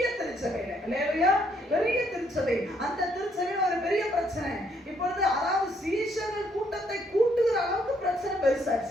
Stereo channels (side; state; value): both; normal; correlation 0.70